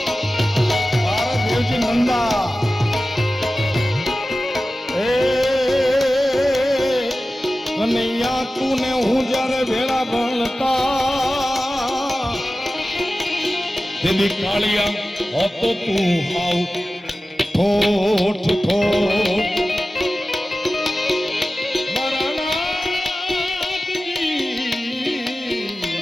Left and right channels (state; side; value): normal; both; correlation 0.95